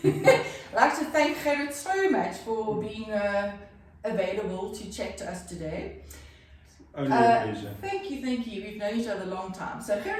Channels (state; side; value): identical; both; correlation 1.00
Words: like to thank Gerrit so much for being available to chat to us today. Only a pleasure. Thank you. We've known each other a long time. So